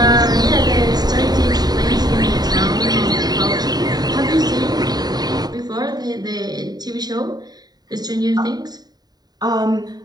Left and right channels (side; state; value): left; late; 0.19 ms